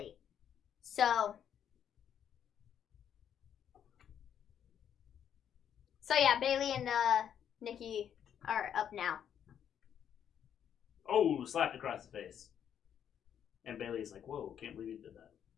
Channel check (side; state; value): right; quieter; 9.0 dB